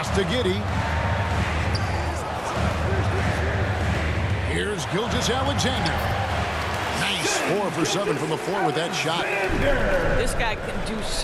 to Giddey. Here's Gilgeous-Alexander. Nice 4 for 7 from the floor with that shot. This guy can do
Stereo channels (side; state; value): both; identical; correlation 1.00